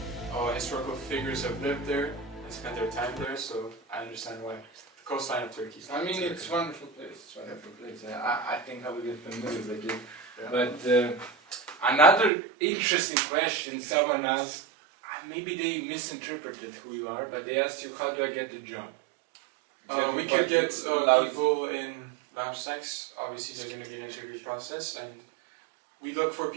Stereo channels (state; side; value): drops out; left; at 12.3 s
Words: historical figures have lived there and spent their time there, so I understand why. The coastline of Turkey. I mean, it's a wonderful place. It's a wonderful place. I think I will get familiar with it. Yeah. But another interesting question someone asked, maybe they misinterpreted who you are, but they asked you, how do I get the job? We could get people in Vamp Snacks. Obviously, there's going to be an interview process, and we look for